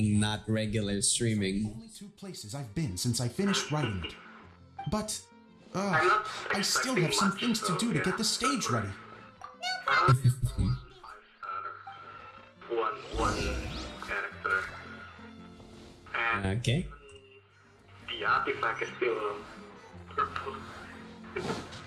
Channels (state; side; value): identical; both; correlation 1.00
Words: not regular streaming. only 2 places I've been since I finished writing it. But, I still have some things to do to get the stage ready. One character. And Okay. the artifact is still purple.